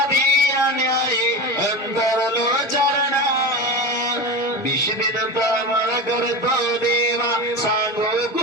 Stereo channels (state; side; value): normal; both; correlation 0.24